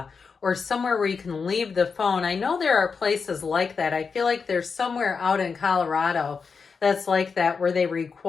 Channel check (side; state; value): right; quieter; 5.3 dB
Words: or somewhere where you can leave the phone. I know there are places like that. I feel like there's somewhere out in Colorado that's like that where they